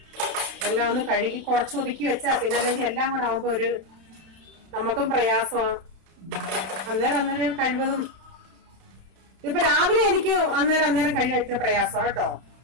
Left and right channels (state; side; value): late; left; 31 ms